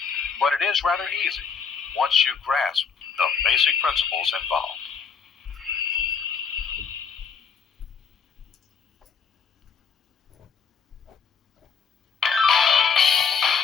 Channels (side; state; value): right; quieter; 6.0 dB